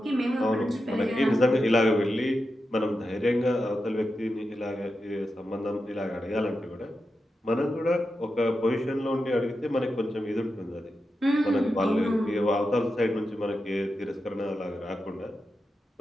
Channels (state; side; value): normal; both; correlation 0.89